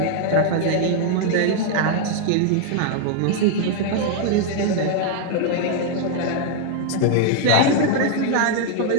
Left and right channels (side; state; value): both; different; correlation 0.00